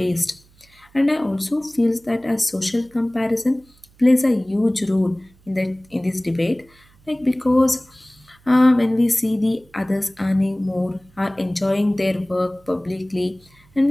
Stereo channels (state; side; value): noise; right; hum, 30 dB below the sound